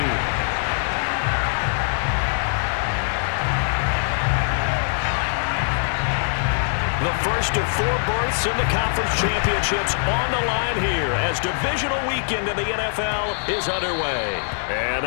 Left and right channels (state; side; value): silent; right; digital silence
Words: The first of 4 berths in the conference championships on the line here as divisional weekend in the NFL is underway. And